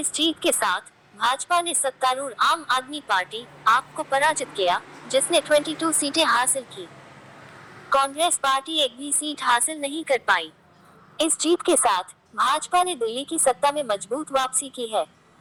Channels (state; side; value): identical; both; correlation 1.00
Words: जीत के साथ भाजपा ने सत्तारूढ़ आम आदमी पार्टी आप को पराजित किया, जिसने 22 सीटें हासिल की। कांग्रेस पार्टी एक भी सीट हासिल नहीं कर पाई। इस जीत के साथ भाजपा ने दिल्ली की सत्ता में मजबूत वापसी की है।